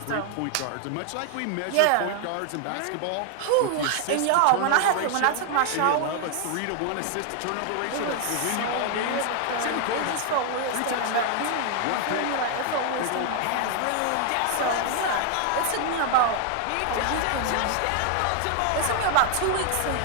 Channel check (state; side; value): different; both; correlation 0.00